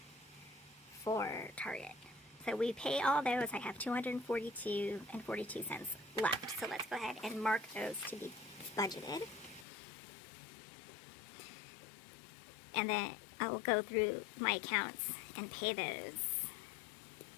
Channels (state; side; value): drops out; right; at 9.7 s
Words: for Target. So we pay all those. I have 242 and 42 cents left. So let's go ahead and mark those to be budgeted. And then I will go through my accounts and pay those.